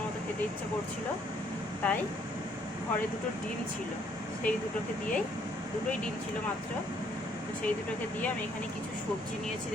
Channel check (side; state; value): both; normal; correlation 0.66